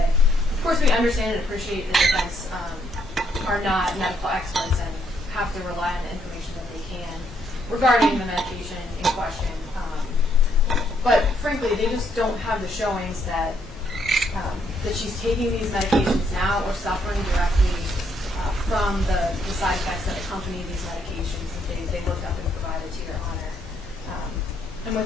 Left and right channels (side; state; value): both; normal; correlation 0.72